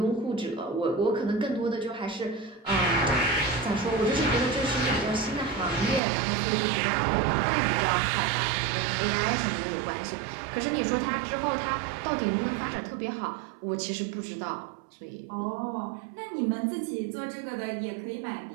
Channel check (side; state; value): left; drops out; at 6.0 s